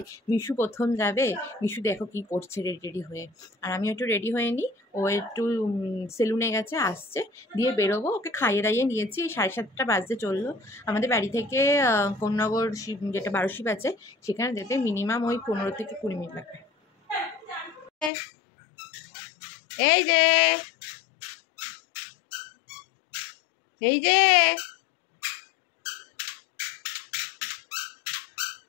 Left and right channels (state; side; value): drops out; right; at 18.1 s